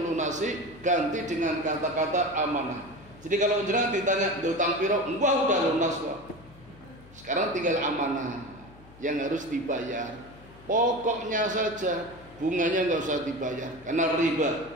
ganti dengan kata-kata amanah. Jadi kalau jenengan ditanya utang piro, wah udah lunas Pak. Sekarang tinggal amanah yang harus dibayar. Pokoknya saja, bunganya nggak usah dibayar karena riba.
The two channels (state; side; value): noise; left; hum, 23 dB below the sound